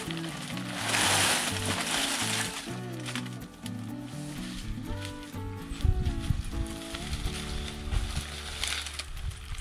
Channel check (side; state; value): both; identical; correlation 1.00